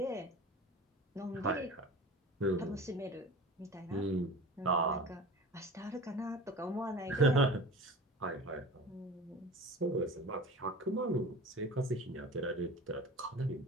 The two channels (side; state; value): both; normal; correlation 0.36